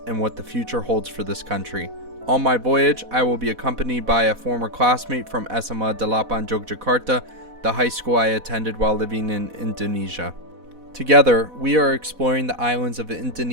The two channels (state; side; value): late; left; 4.1 ms